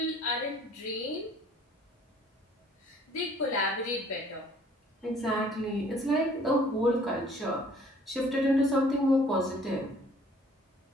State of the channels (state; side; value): normal; both; correlation 0.56